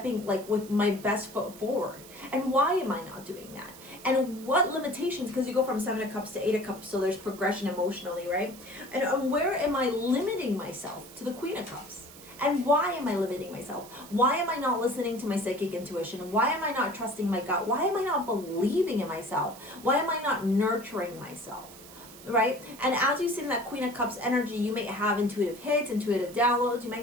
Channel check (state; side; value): noise; right; hiss, 18 dB below the sound